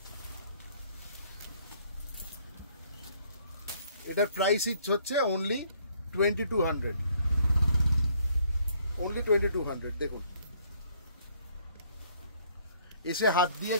এটার প্রাইস হচ্ছে অনলি 2200, অনলি 2200। দেখুন এসে হাত দিয়ে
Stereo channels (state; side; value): inverted; both; correlation -0.64